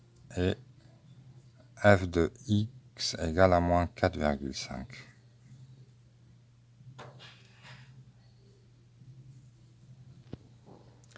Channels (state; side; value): identical; both; correlation 1.00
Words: et f de x égale à moins 4,5.